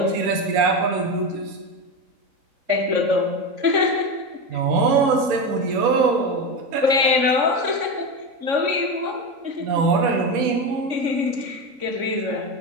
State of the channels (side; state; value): left; late; 3.5 ms